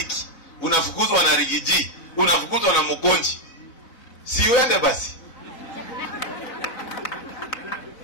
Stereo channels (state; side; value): late; right; 3.8 ms